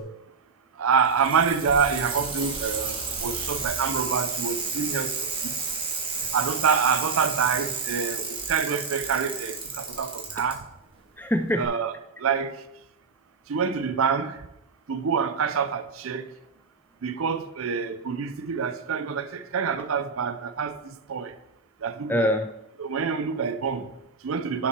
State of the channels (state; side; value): quieter; left; 5.1 dB